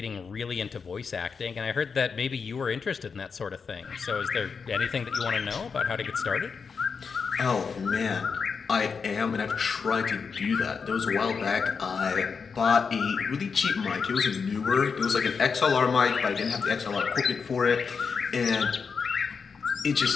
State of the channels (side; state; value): right; quieter; 5.6 dB